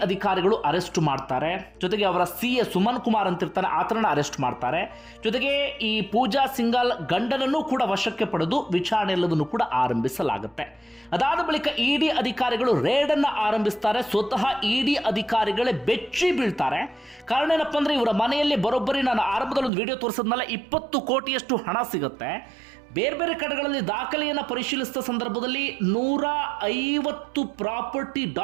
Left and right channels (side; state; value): left; drops out; at 19.7 s